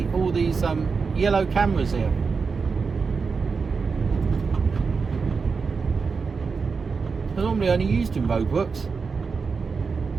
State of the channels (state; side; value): quieter; left; 5.0 dB